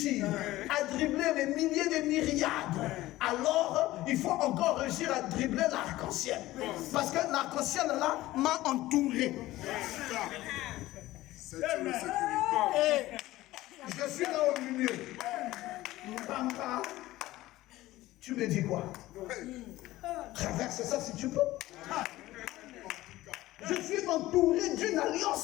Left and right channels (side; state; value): right; quieter; 16.8 dB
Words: à dribbler les milliers de myriades, alors il faut encore réussir à dribbler l'arc-en-ciel. Parce que l'arc-en-ciel là m'a entouré. Et je suis là au milieu. Bamba, tu me dis quoi? Traverse ça si tu peux. Je suis entouré d'une